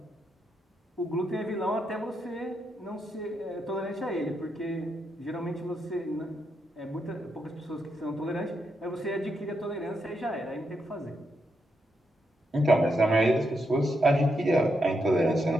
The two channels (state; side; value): normal; both; correlation 0.82